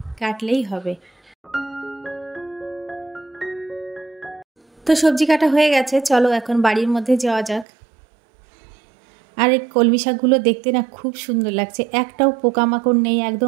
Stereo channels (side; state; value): left; drops out; at 7.7 s